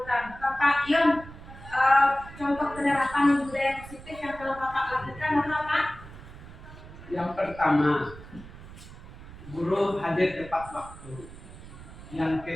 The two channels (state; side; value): noise; right; rumble, 16 dB below the sound